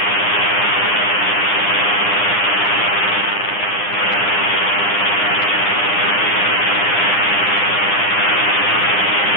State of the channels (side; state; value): right; late; 9.8 ms